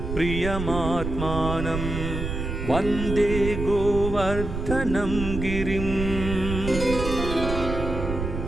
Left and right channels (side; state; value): right; noise; rumble, 5 dB below the sound